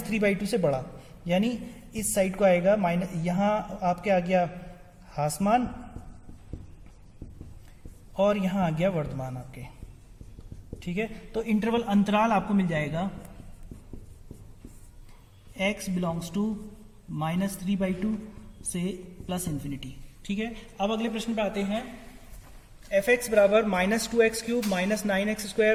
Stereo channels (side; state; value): both; identical; correlation 1.00